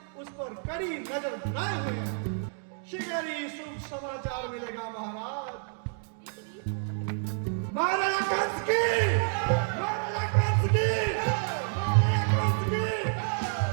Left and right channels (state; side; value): silent; left; 57 dB below the other